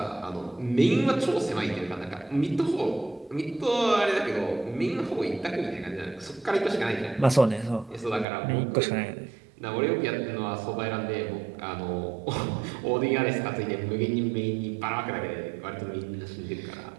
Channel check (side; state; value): left; drops out; at 8.2 s